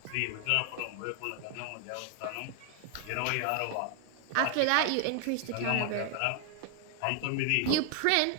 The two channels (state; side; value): different; both; correlation 0.00